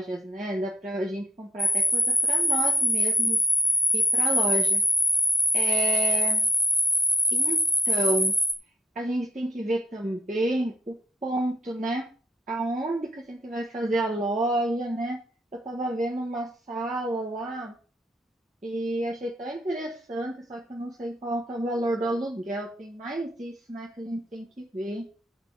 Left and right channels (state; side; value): normal; both; correlation 0.65